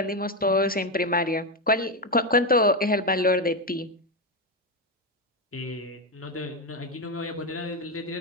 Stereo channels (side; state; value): both; normal; correlation 0.10